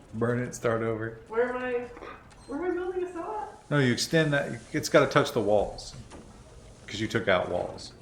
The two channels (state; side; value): identical; both; correlation 1.00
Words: Burn it, start over. Where am I building a cell at? No, you extend that. It's gotta touch the walls. Because you took out walls.